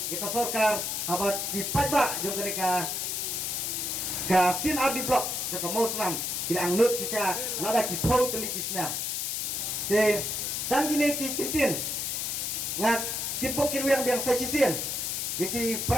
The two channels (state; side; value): noise; left; hiss, 1 dB below the sound